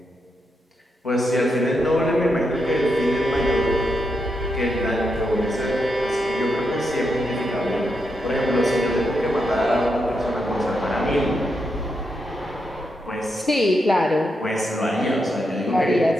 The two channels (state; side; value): normal; both; correlation 0.83